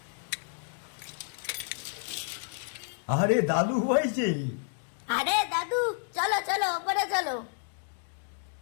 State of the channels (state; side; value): silent; right; 57 dB below the other